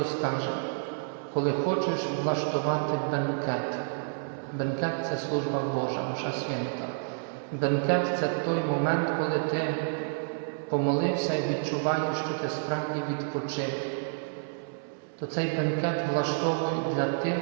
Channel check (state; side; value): silent; left; 58 dB below the other